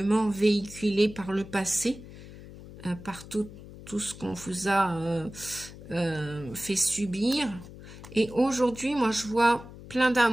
véhiculée par le passé, par tout ce qu'on vous a fait subir. Et aujourd'hui, moi, je vois plein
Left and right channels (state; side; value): noise; left; hum, 16 dB below the sound